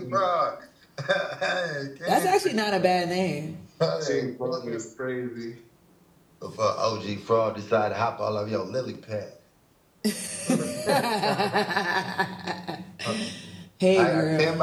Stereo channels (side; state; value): both; identical; correlation 1.00